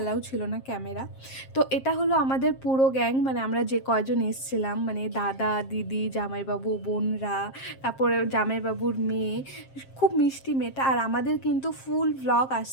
ছিল না ক্যামেরা। তো এটা হলো আমাদের পুরো গ্যাং, মানে আমরা যে কয়জন এসছিলাম, মানে দাদা দিদি জামাইবাবু বোনরা, তারপরে জামাইবাবুর মেয়ে, খুব মিষ্টি মেয়েটা। আর আমাদের কিন্তু ফুল ভ্লগ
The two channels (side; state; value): right; late; 7.5 ms